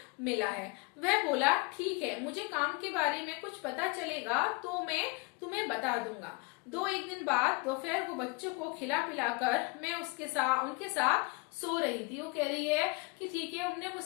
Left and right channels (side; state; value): right; quieter; 27.5 dB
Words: मिला है। वह बोला ठीक है, मुझे काम के बारे में कुछ पता चलेगा तो मैं तुम्हें बता दूंगा। 2-1 दिन बाद दोपहर को बच्चों को खिला पिलाकर मैं उनके साथ सो रही थी। वो कह रही है कि ठीक है, उन्होंने